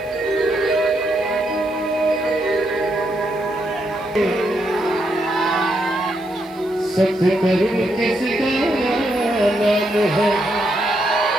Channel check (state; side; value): noise; right; hiss, 28 dB below the sound